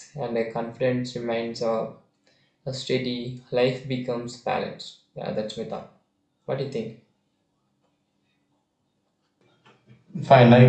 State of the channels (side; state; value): both; identical; correlation 1.00